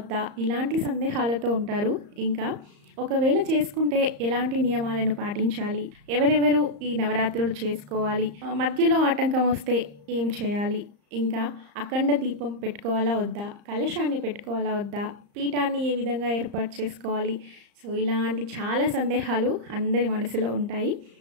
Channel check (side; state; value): left; late; 34 ms